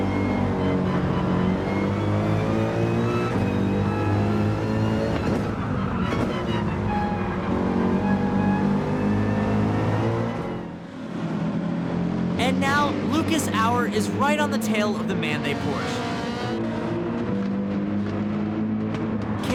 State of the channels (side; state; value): both; identical; correlation 1.00